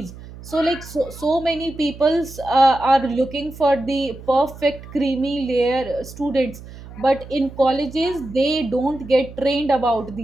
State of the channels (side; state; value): right; noise; hum, 16 dB below the sound